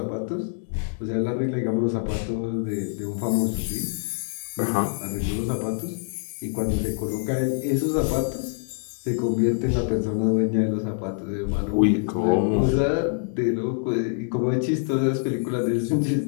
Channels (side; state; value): right; silent; digital silence